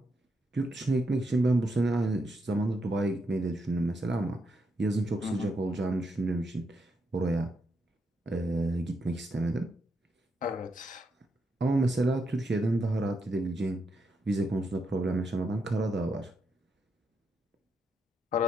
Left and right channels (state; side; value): normal; both; correlation 0.81